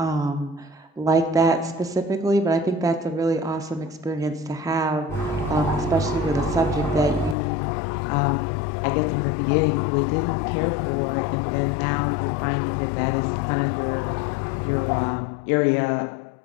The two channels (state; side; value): drops out; right; at 7.4 s